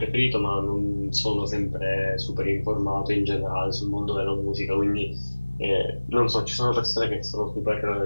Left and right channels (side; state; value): both; inverted; correlation -1.00